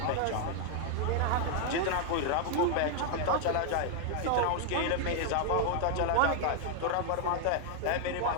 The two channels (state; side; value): different; both; correlation 0.00